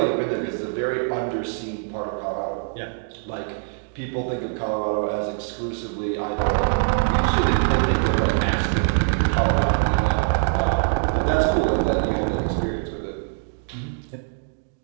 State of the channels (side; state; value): left; silent; digital silence